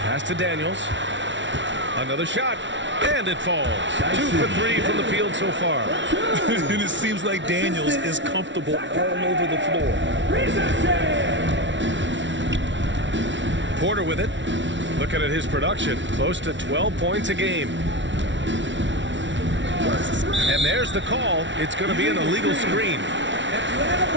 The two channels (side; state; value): left; late; 0.54 ms